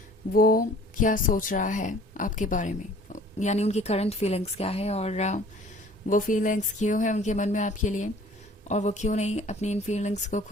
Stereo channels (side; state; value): both; normal; correlation 0.51